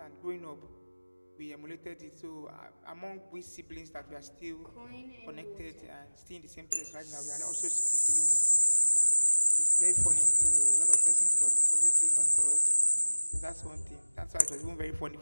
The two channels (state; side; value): inverted; both; correlation -1.00